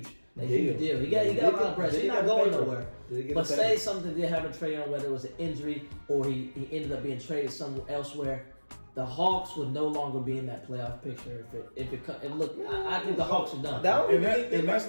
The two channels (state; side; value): inverted; both; correlation -1.00